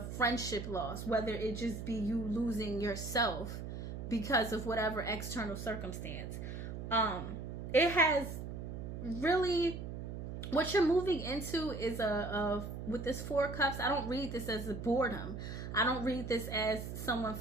loss, whether it just be you losing yourself because of whatever external circumstance, it has really, what you're moving into is with this Four Cups, I don't read this as a boredom. I don't read this as someone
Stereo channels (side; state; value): right; noise; hum, 7 dB below the sound